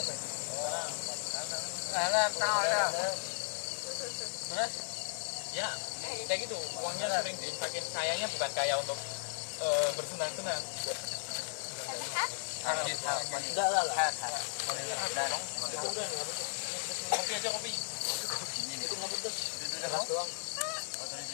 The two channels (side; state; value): right; silent; 54 dB below the other